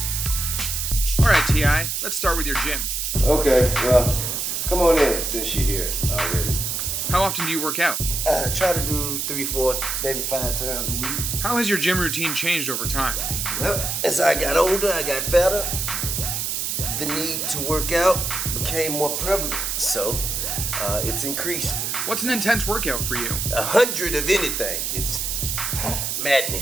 Alright T.I., let's start with your gym. Okay, well, come on in since you're here already. How often do you work out? Try to do 3, 4, maybe 5 times a week. How has your gym routine changed over time? Well, as I got older, I got fatter. The need to work out became more prevalent, so it's increased. What's an intense workout for you? 100 of anything is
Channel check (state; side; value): noise; right; hiss, 1 dB below the sound